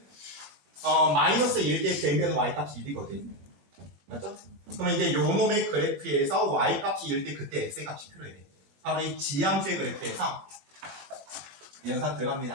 마이너스 1 대 대면 y값이 1이거든. 맞죠? 그러면 이제 요 놈의 그래프에서 y값이 1 때 그때 x값이 필요해. 바로 이 지함수의 그래프에서 연산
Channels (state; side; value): late; left; 21 ms